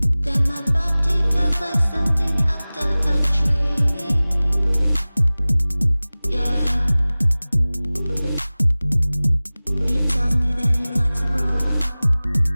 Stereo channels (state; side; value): inverted; both; correlation -0.99